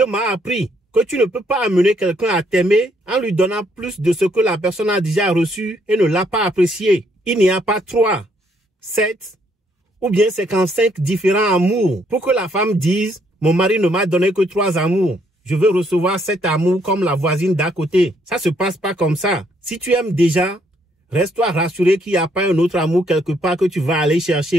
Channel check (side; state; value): both; normal; correlation 0.70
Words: m'a appris que tu ne peux pas amener quelqu'un à t'aimer en lui donnant plus de ce que la personne a déjà reçu et ne l'a pas apprécié. Il n'y a pas 3, 7 ou bien 55 différents amours pour que la femme dise « Mon mari ne m'a donné que 3 amours. Je veux recevoir 7 amours comme la voisine d'à côté. » Ça se passe pas comme ça. Si tu aimes déjà, reste-toi rassuré qu'il n'y a pas un autre amour quelque part que tu vas aller